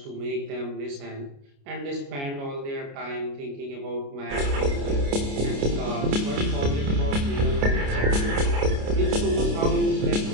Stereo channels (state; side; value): late; left; 29 ms